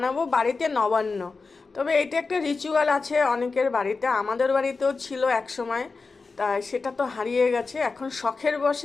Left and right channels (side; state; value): right; quieter; 4.2 dB